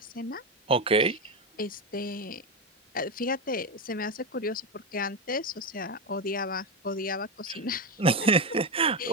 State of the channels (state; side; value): normal; both; correlation 0.12